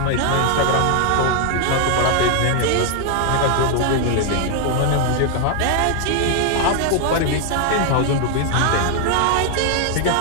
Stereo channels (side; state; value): both; different; correlation 0.00